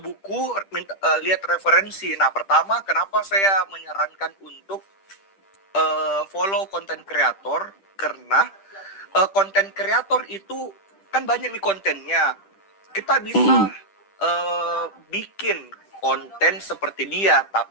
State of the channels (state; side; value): late; right; 10 ms